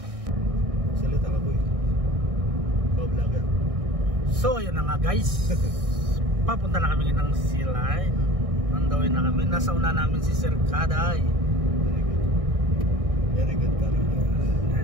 Salita ka boy. Vlogger. So yun na nga guys. Papunta na kami ng Sea Line. Nandawin na kami. Nasa una namin si Sir Kaday. Very good. Very good Paring.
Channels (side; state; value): left; late; 1.6 ms